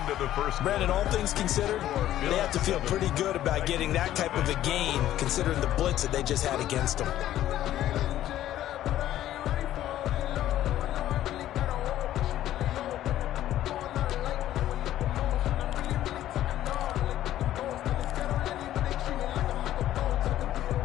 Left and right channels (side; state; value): right; quieter; 12.9 dB